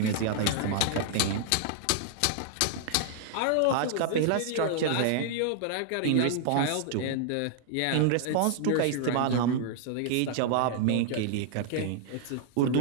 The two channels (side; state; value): both; different; correlation -0.01